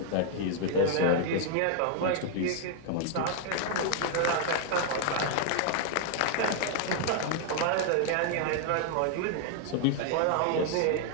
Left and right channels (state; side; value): different; both; correlation 0.00